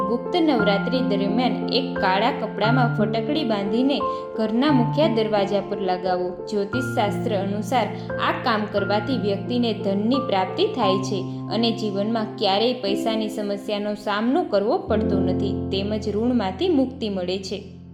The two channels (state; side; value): identical; both; correlation 1.00